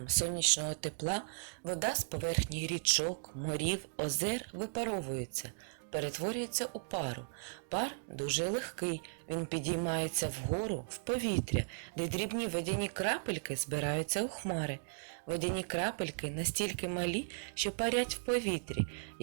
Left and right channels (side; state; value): left; silent; digital silence